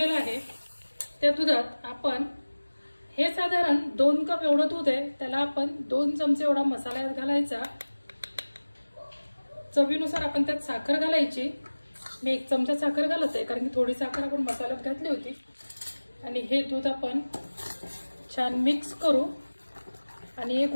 आहे। त्या दुधात आपण हे साधारण 2 कप एवढं दूध आहे, त्याला आपण 2 चमचे एवढा मसाला घालायचा। चवीनुसार आपण त्यात साखर घालायची। मी 1 चमचा साखर घालत आहे, कारण की थोडी साखर आपण मसाल्यात घातली होती। आणि हे दूध आपण छान मिक्स करू आणि एक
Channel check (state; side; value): inverted; both; correlation -1.00